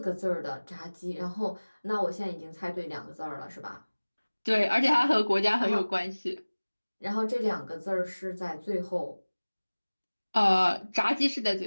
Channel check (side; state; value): both; inverted; correlation -1.00